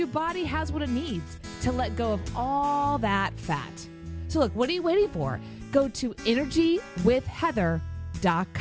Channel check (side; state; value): both; identical; correlation 1.00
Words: body has what it needs to let go of all that fat. So look, what are you waiting for? Go to